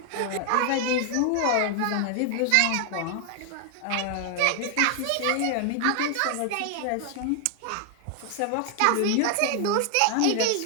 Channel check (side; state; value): both; different; correlation 0.00